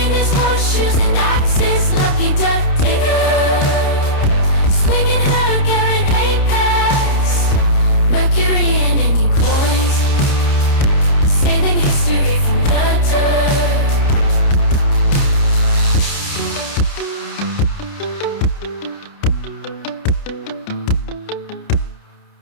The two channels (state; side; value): late; right; 29 ms